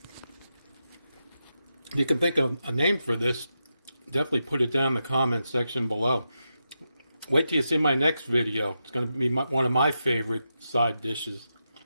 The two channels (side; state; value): both; inverted; correlation -0.87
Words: If you can think of a name for this, definitely put it down in the comment section below. Wait till you see my next video. It's going to be one of my favorite side dishes.